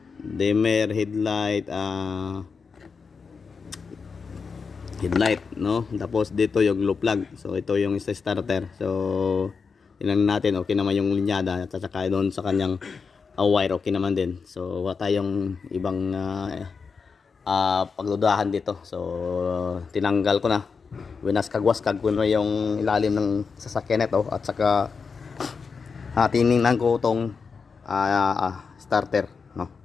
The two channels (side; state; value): right; quieter; 5.3 dB